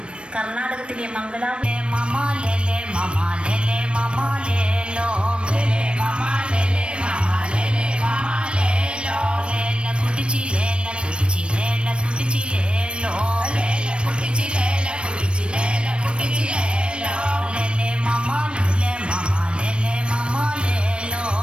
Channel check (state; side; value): late; left; 0.058 ms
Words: കർണാടകത്തിലെ മംഗലാപുരത്തിലെ മമാലേലെ മമാലേലെ മമാലേലോ ലേലെ മമാലേലെ മമാലേലെ മമാലേലോ ലേല കുടിച്ചിലേല കുടിച്ചിലേല കുടിച്ചിലേലോ ലേല കുടിച്ചിലേല കുടിച്ചിലേല കുടിച്ചിലേലോ ലേലെ മമാലേലെ മമാലേലെ മമാലേലോ